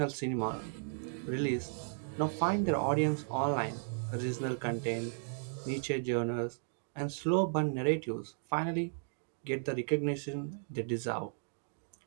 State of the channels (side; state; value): left; silent; digital silence